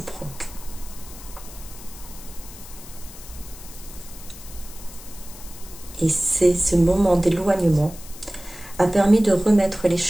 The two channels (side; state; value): left; noise; hiss, 16 dB below the sound